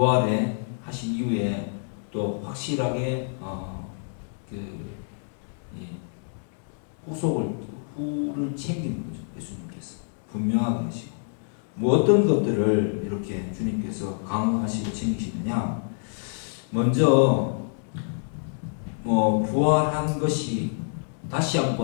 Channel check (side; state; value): right; silent; digital silence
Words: 하신 이후에 또 확실하게 후를 챙기는 거죠. 예수님께서 분명하게 하시고 뭐 어떤 것들을 이렇게 주님께서 강화하시고 챙기시느냐. 먼저 부활한 것이 다시